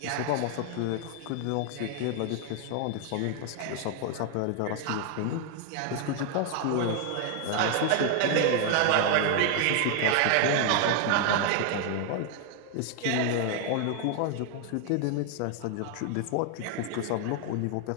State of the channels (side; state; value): both; different; correlation 0.00